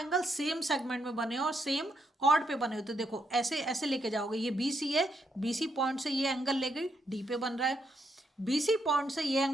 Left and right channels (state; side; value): normal; both; correlation 0.78